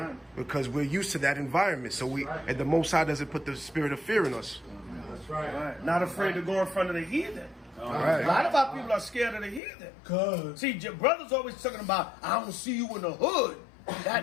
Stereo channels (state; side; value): drops out; right; at 9.6 s